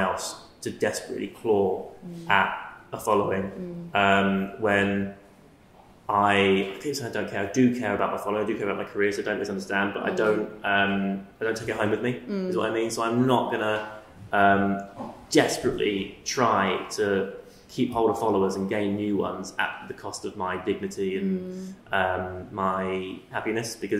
to desperately claw at a following when. I don't care. I do care about my following. I do care about my career, so don't misunderstand. But I don't take it home with me. Is what I mean. So I'm not gonna desperately try to keep hold of followers and gain new ones at the cost of my dignity and my happiness.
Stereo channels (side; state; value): both; identical; correlation 1.00